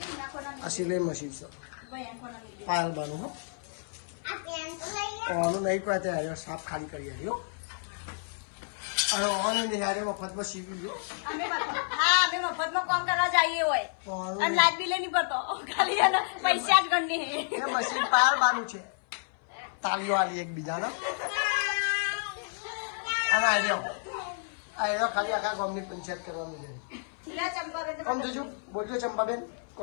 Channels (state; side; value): silent; right; 56 dB below the other